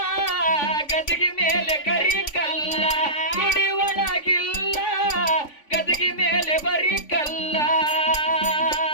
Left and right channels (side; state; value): right; late; 3.5 ms